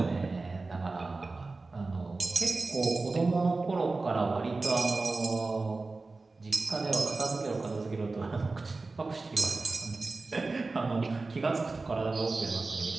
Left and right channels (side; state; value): left; quieter; 3.6 dB